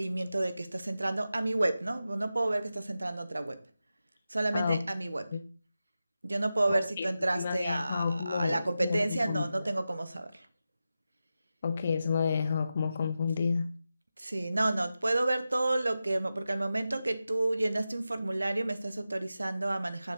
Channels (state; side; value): inverted; both; correlation -0.91